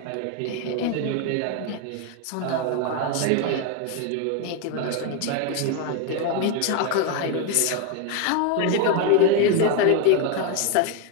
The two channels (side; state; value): both; different; correlation 0.01